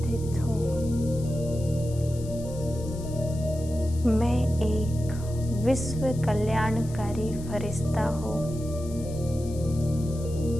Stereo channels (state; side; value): noise; left; hiss, 19 dB below the sound